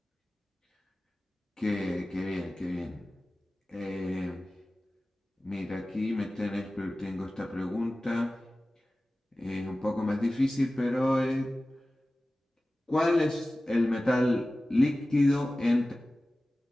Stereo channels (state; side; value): normal; both; correlation 0.97